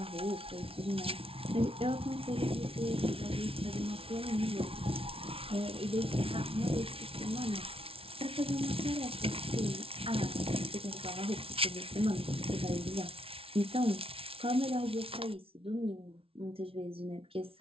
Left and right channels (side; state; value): left; late; 0.26 ms